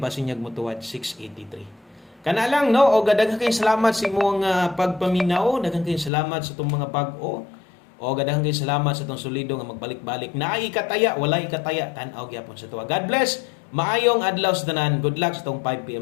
niya mo tuwad 683. Kana lang no, o daghang kay salamat sa imong pagpaminaw, daghang kay salamat sa tong mga bag-o. O daghang kay salamat sa tong solido nga magbalik-balik. Naay ikataya, wala ikataya, tan-aw gyapon sa tuwa. God bless. Maayong adlaw sa tanan. Good luck sa tong 5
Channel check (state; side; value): drops out; right; at 6.1 s